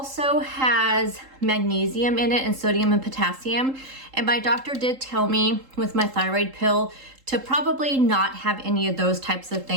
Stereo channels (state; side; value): late; left; 3.8 ms